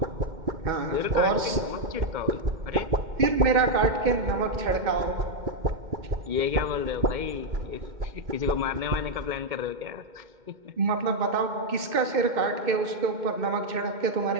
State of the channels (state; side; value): late; left; 2.1 ms